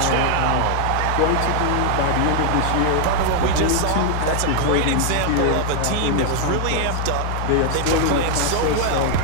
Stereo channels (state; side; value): different; both; correlation 0.00